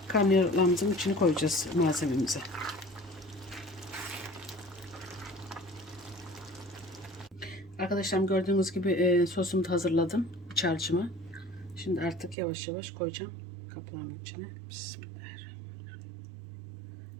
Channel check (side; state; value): left; drops out; at 12.4 s